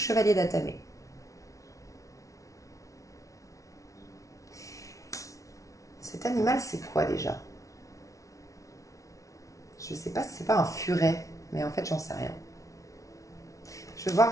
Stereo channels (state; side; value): late; right; 0.16 ms